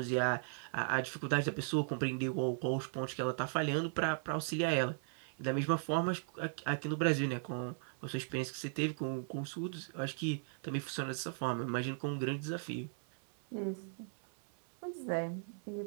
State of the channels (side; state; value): left; silent; 53 dB below the other